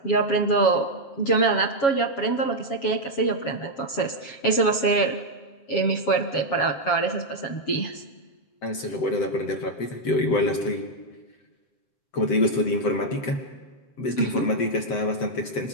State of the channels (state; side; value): late; right; 7.3 ms